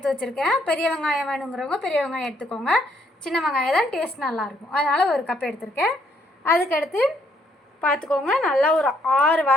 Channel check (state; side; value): normal; both; correlation 0.70